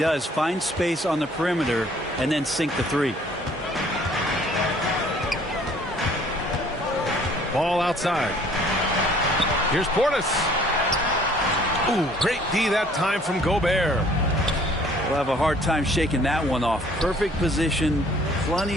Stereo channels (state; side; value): normal; both; correlation 0.57